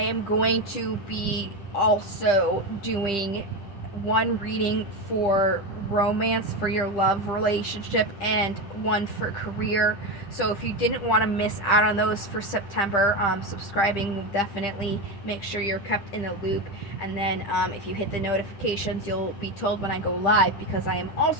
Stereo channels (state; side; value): late; right; 10 ms